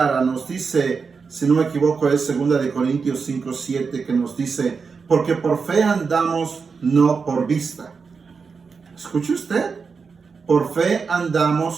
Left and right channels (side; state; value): left; quieter; 5.2 dB